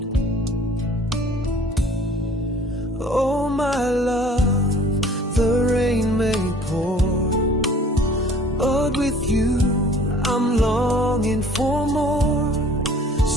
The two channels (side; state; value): both; normal; correlation 0.51